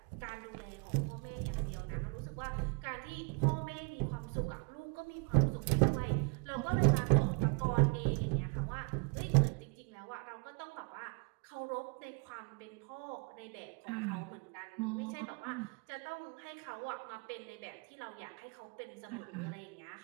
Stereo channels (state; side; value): quieter; left; 33.7 dB